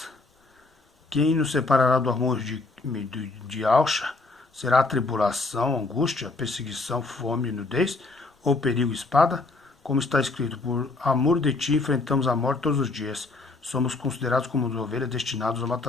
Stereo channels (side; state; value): right; quieter; 3.5 dB